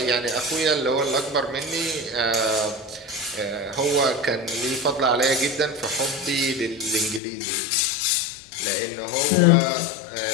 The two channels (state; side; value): drops out; right; at 7.2 s